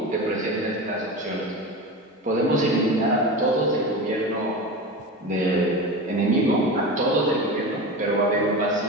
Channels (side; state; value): both; normal; correlation 0.27